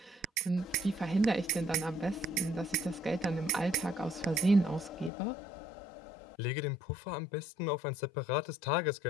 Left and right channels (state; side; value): drops out; right; at 5.1 s